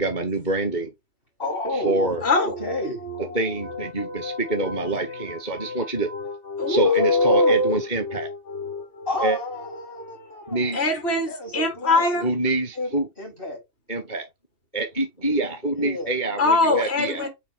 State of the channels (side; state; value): right; late; 2.7 ms